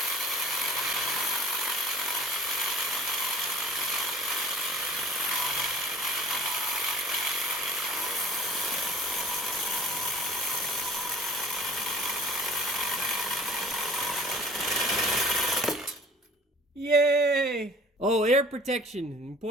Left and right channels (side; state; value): both; normal; correlation 0.48